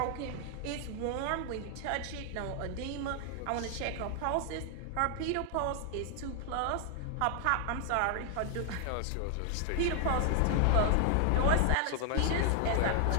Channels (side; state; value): both; different; correlation 0.00